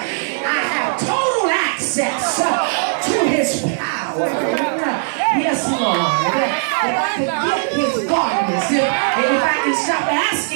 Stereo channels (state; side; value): silent; left; digital silence